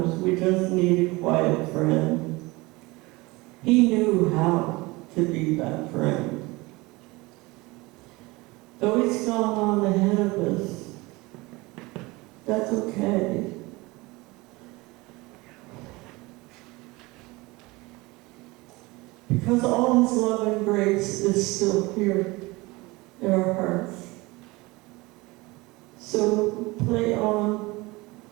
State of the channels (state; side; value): quieter; left; 22.8 dB